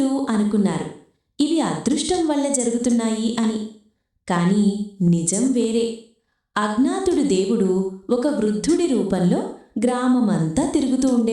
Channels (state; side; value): identical; both; correlation 1.00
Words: అనుకున్నారు, ఇవి అదృష్టం వల్ల జరుగుతున్నాయి అని. కానీ నిజం వేరే. అజ్ఞాతుడు దేవుడు ఒక వృద్ధుడి రూపంలో గ్రామమంతా తిరుగుతూ